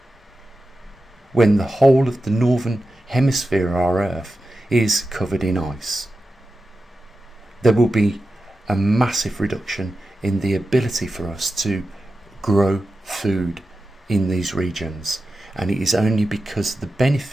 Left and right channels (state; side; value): normal; both; correlation 0.92